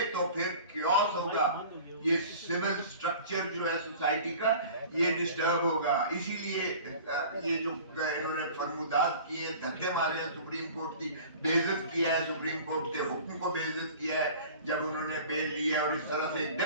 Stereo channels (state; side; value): inverted; both; correlation -0.42